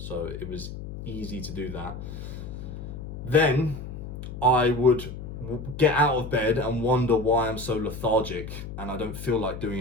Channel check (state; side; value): noise; left; hum, 9 dB below the sound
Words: it was easy to do that. Then I would get out of bed and wonder why I'm so lethargic and I don't feel like doing